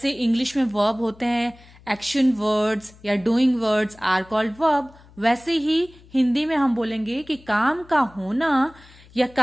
इंग्लिश में वर्ब होते हैं, एक्शन वर्ड्स या doing words are called verb, वैसे ही हिंदी में हम बोलेंगे कि काम का होना या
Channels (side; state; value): left; noise; hum, 25 dB below the sound